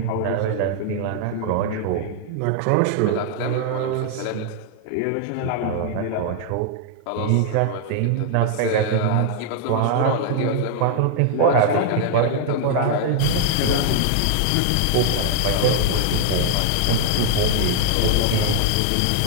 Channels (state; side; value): different; both; correlation 0.00